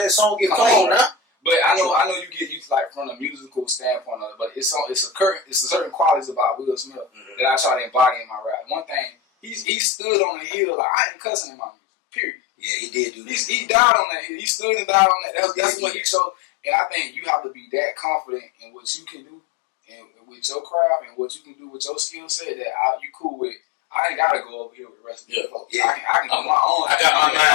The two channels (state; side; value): drops out; right; at 9.7 s